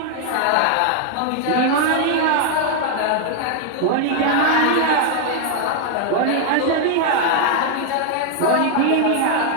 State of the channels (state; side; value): different; both; correlation 0.00